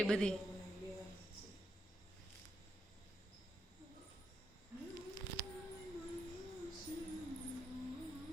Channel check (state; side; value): normal; both; correlation 0.81